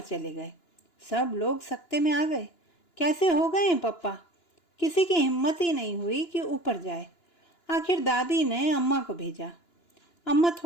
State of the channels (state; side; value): late; right; 2.9 ms